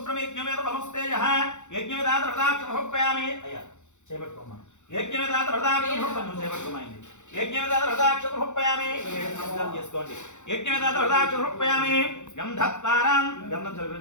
పరమస్తేజః యజ్ఞవేదాత రథాక్షమహోపయామి అయ్యా చేపట్టుకోమా యజ్ఞవేదాత రథాక్షమహోపయామి చేపట్టుకోమైంది యజ్ఞవేదాత రథాక్షమహోపయామి నమస్కారం చేసుకోండి యజ్ఞవేదాత రథాక్షమహోపయామి గంధత్వారాం గంధం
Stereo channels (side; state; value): right; late; 0.84 ms